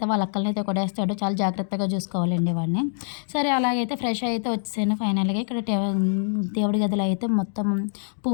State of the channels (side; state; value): right; silent; digital silence